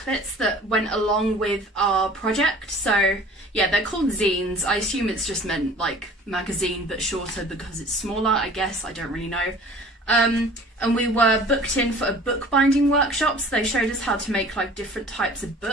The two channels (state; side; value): normal; both; correlation 0.47